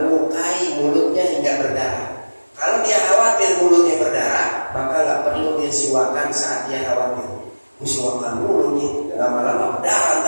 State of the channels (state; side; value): inverted; both; correlation -1.00